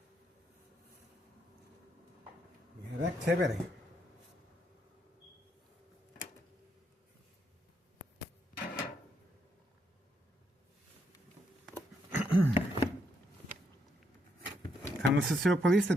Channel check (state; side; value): normal; both; correlation 0.76